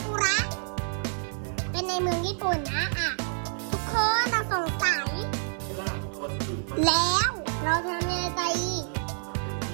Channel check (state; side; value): silent; left; 59 dB below the other